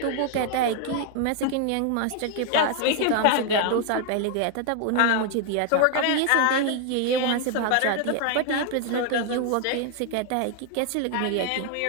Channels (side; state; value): both; different; correlation 0.00